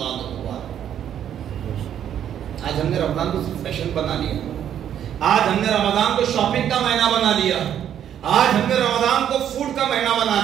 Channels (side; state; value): left; quieter; 9.8 dB